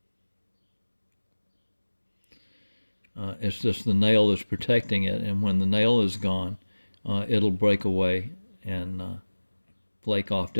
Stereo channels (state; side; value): inverted; both; correlation -1.00